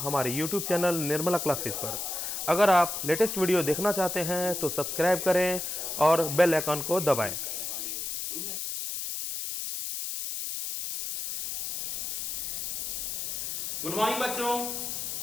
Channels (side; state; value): left; noise; hiss, 4 dB below the sound